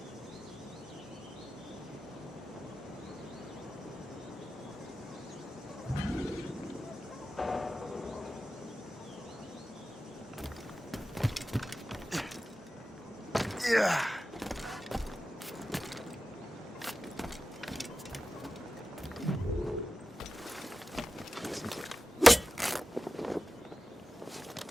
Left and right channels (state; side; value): normal; both; correlation 0.94